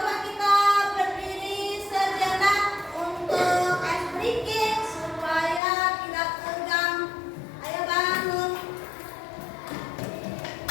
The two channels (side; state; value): right; drops out; at 5.6 s